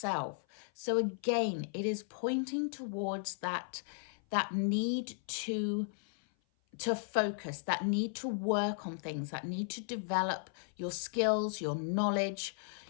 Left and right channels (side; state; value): right; silent; 54 dB below the other